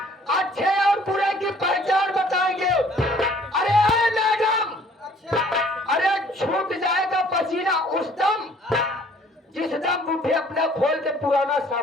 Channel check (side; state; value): both; normal; correlation 0.57